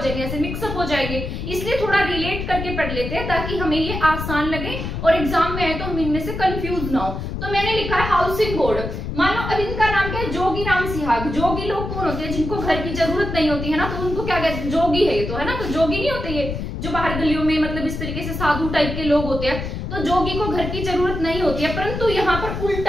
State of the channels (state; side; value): noise; left; rumble, 5 dB below the sound